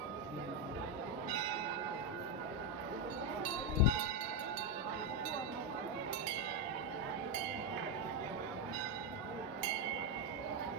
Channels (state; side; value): normal; both; correlation 0.05